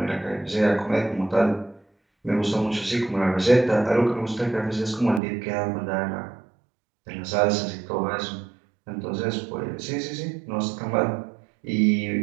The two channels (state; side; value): drops out; left; at 5.2 s